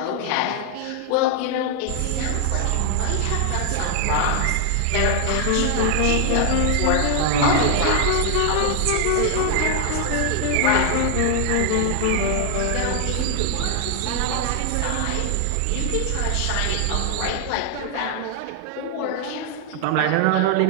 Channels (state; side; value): different; both; correlation 0.00